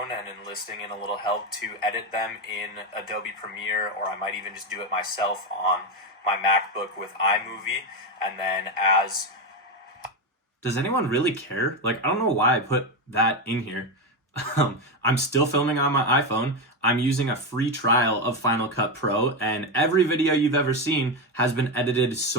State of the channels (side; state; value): both; normal; correlation 0.12